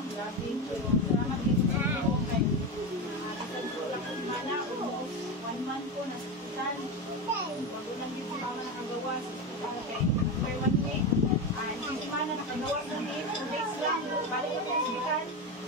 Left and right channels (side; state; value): both; normal; correlation 0.17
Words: Grabe yung salamat dito sa iyo kay isang kulang ko mana, almost 1 month ko nasa hospital. Bago lang din si mama nakagawa sa hospital kay for 1 week. Hindi si mana nakagawa sa day, 2 days lang. Balik ko sa hospital.